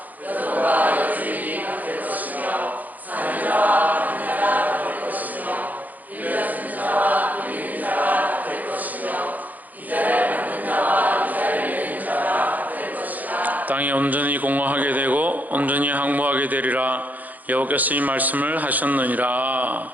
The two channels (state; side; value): late; left; 0.081 ms